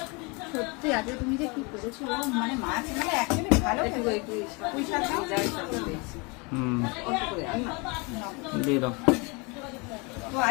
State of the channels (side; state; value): right; quieter; 29.5 dB